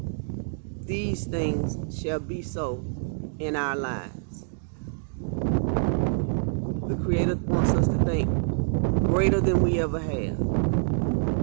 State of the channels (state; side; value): silent; left; digital silence